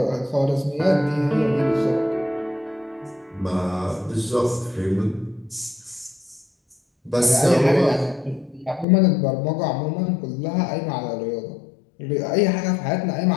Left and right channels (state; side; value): drops out; right; at 8.8 s